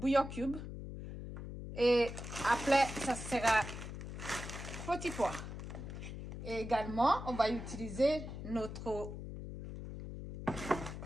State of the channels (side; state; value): left; noise; hum, 8 dB below the sound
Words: cube. Et après, ça sera petit pois. Et également, on va utiliser notre